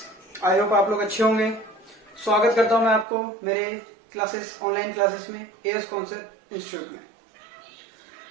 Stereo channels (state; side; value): drops out; left; at 3.1 s